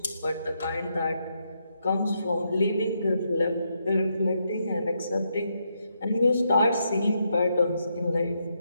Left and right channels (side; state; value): both; inverted; correlation -0.80